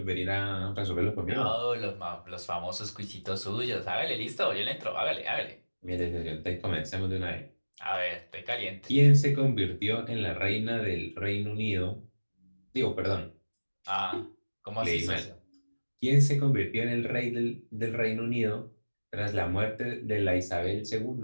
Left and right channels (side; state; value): both; inverted; correlation -1.00